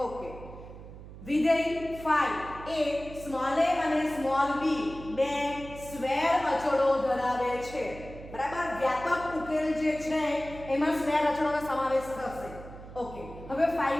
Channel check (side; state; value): right; noise; hum, 15 dB below the sound